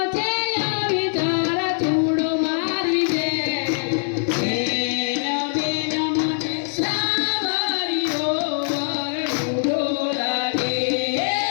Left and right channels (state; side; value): silent; right; 61 dB below the other